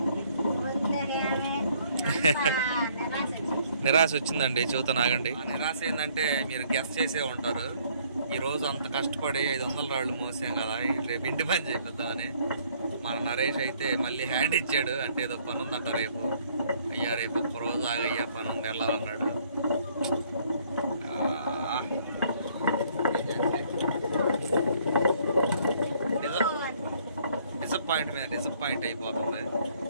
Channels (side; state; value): both; inverted; correlation -0.63